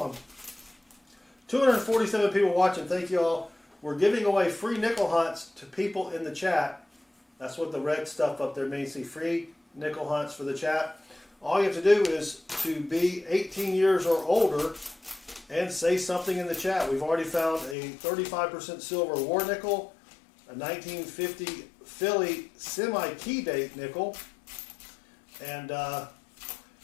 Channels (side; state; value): right; drops out; at 17.8 s